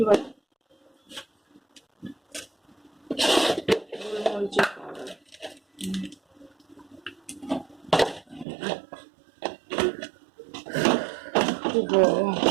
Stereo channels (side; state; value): left; drops out; at 8.5 s